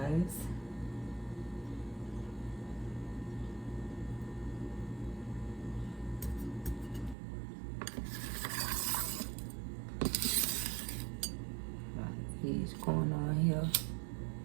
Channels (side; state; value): left; drops out; at 7.2 s